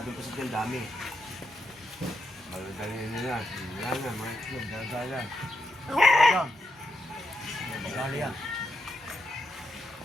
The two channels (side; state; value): both; normal; correlation 0.82